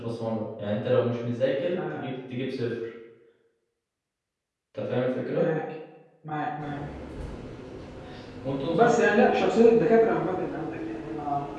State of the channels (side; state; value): both; identical; correlation 1.00